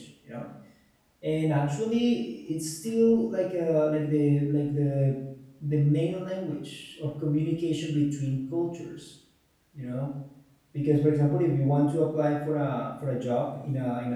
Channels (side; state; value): both; identical; correlation 1.00